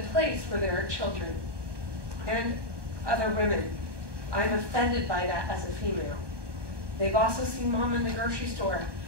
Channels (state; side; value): late; left; 1.2 ms